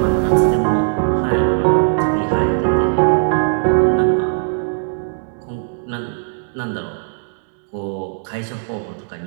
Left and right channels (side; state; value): left; silent; digital silence